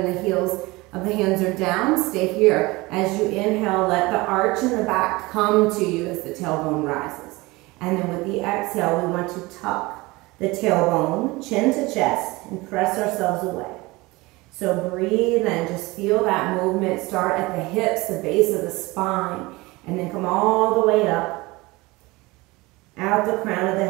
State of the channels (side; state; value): left; quieter; 22.3 dB